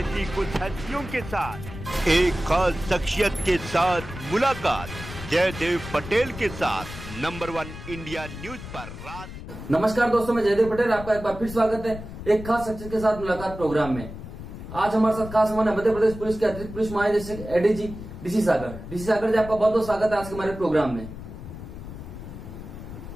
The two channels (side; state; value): left; noise; rumble, 11 dB below the sound